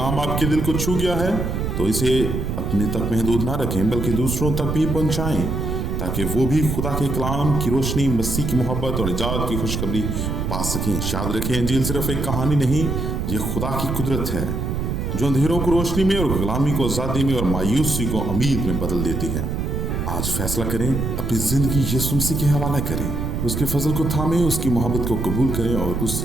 آپ کے دل کو چھو گیا ہے تو اسے اپنے تک محدود نہ رکھیں بلکہ دوسروں تک بھی پہنچائیں، تاکہ وہ بھی خدا کے کلام کی روشنی، مسیح کی محبت اور نجات کی خوشخبری پا سکیں۔ یاد رکھیں، انجیل صرف ایک کہانی نہیں، یہ خدا کی قدرت ہے جو اندھیروں کو روشنی میں اور غلامی کو آزادی میں اور مایوسی کو امید میں بدل دیتی ہے۔ آج فیصلہ کریں، اپنی زندگی یسوع مسیح کے حوالے کریں، اس کے فضل کو تھامیں، اس کی محبت کو قبول کریں اور اس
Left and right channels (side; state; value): right; noise; rumble, 2 dB below the sound